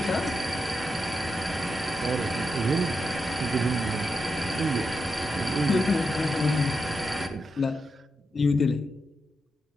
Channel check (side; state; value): both; normal; correlation 0.86